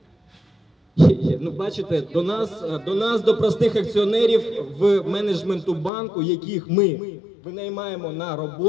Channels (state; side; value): drops out; right; at 5.9 s